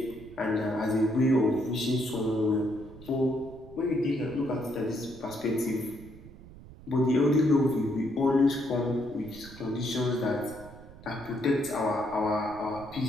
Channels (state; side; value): noise; right; rumble, 18 dB below the sound